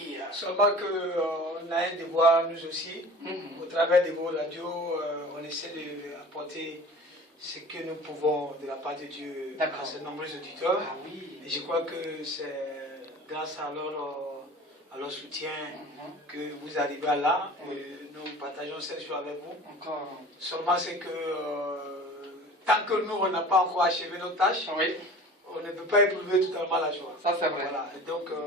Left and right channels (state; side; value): normal; both; correlation 0.41